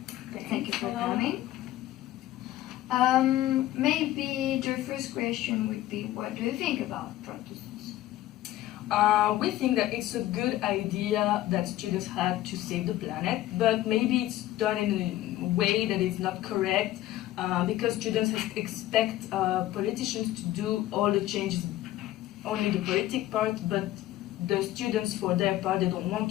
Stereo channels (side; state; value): right; quieter; 14.7 dB